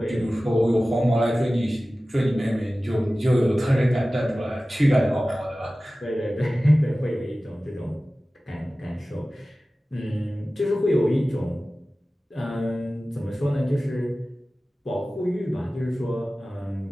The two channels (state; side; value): normal; both; correlation 0.96